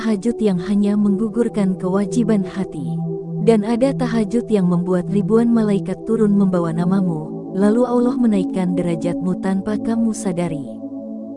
yang hanya menggugurkan kewajiban hati. Dan ada tahajud yang membuat ribuan malaikat turun membawa namamu, lalu Allah menaikkan derajatmu tanpa kamu sadari.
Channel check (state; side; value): identical; both; correlation 1.00